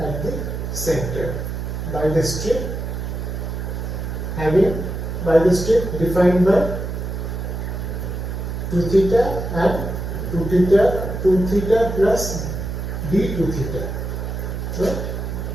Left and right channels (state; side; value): noise; right; hum, 4 dB below the sound